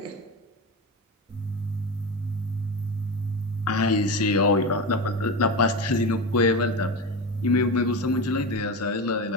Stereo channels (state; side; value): normal; both; correlation 0.21